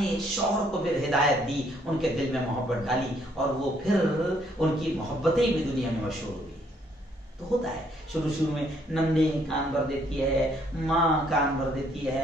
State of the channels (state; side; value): normal; both; correlation 0.67